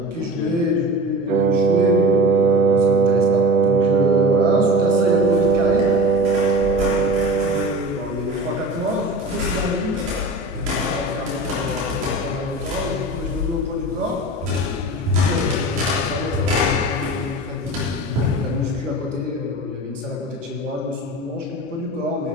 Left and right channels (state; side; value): normal; both; correlation 0.33